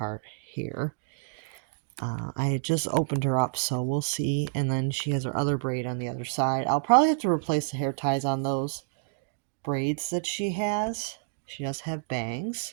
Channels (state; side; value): silent; left; digital silence